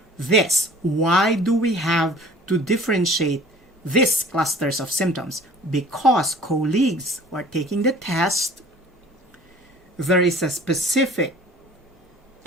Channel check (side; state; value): both; normal; correlation 0.48